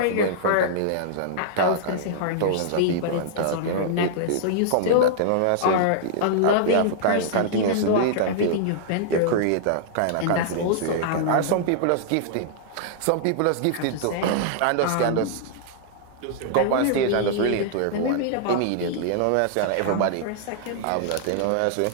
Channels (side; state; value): both; different; correlation -0.01